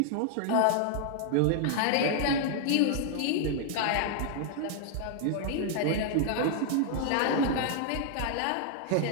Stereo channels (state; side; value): different; both; correlation 0.00